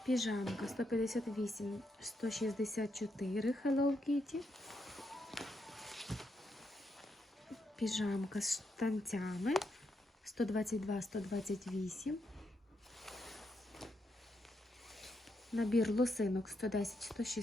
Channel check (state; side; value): normal; both; correlation 0.80